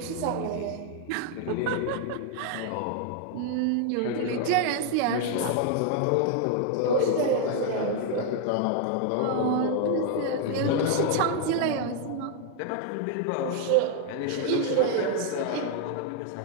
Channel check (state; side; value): different; both; correlation 0.00